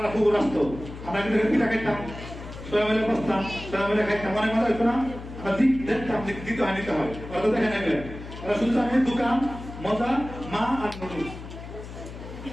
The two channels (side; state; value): left; noise; hum, 12 dB below the sound